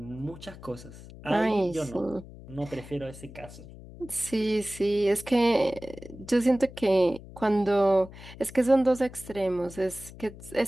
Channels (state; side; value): noise; left; hum, 17 dB below the sound